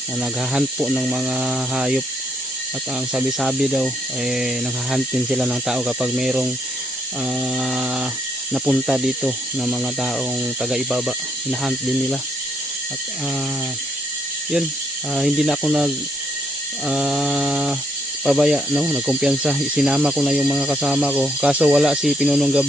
na naghahunt po ng mga hayop. At ang sabi-sabi daw ay naghahunt din sila ng tao kapag merong napunta dito na mga taong taga-ibaba. Hinahunt din nila. At yun, hindi na ako pabaya, no, nagkumpiyansa. Sinama ko na yung mga kasama ko, kaso wala si Pinunong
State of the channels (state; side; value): normal; both; correlation 0.71